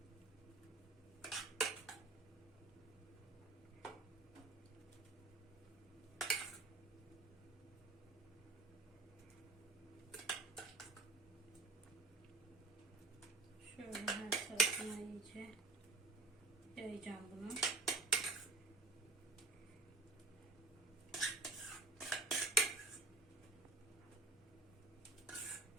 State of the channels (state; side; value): quieter; left; 3.1 dB